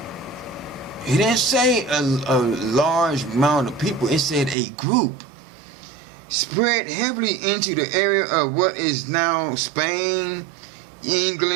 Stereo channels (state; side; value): drops out; left; at 4.5 s